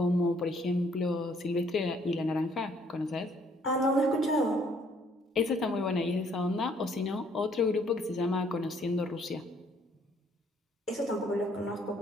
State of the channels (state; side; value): normal; both; correlation 0.64